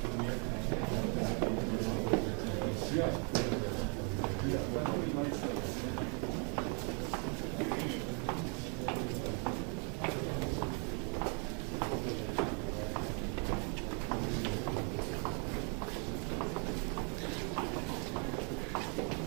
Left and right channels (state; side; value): quieter; left; 38.0 dB